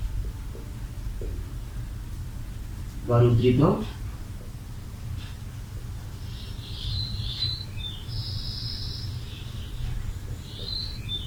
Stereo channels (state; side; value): identical; both; correlation 1.00